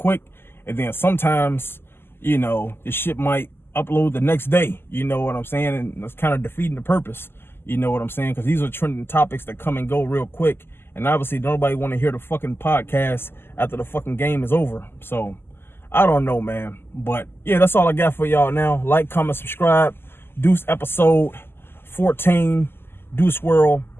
and then sometimes, you know, the shit might upload the next day. You know what I'm saying? And that's kind of defeating the purpose. You know what I'm saying? Because these are trending topics that come and go real quick, and obviously nobody want to hear the fucking podcast after the fucking game is over. So I don't know, man. But yeah, that's all I got for y'all now. Like, comment, subscribe. Deuce episode 14. Deuce World,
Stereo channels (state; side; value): late; right; 0.11 ms